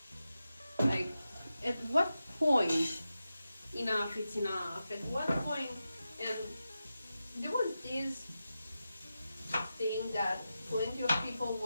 Like, at what point enough is enough? At what point? And there was this thing that plenty of people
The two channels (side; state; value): both; inverted; correlation -0.91